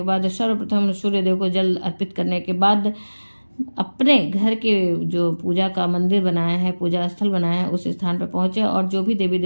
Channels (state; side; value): inverted; both; correlation -1.00